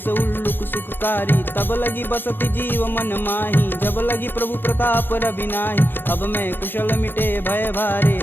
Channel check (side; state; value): right; late; 0.098 ms